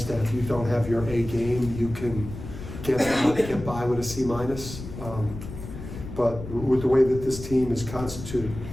that if you don't have your A game, you can get by with a C-. But with the way that this team is constituted,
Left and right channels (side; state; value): left; noise; rumble, 10 dB below the sound